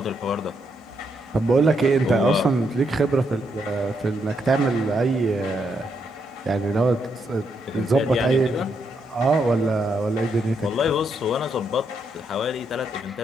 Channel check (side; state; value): both; normal; correlation 0.78